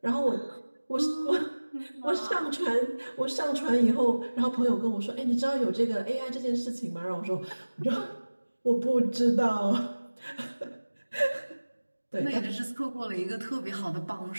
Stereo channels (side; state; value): both; inverted; correlation -1.00